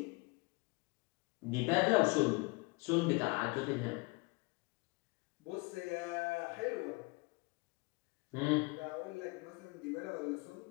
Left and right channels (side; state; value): right; quieter; 27.8 dB